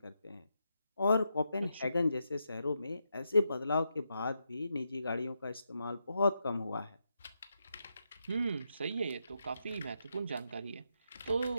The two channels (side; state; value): both; inverted; correlation -0.83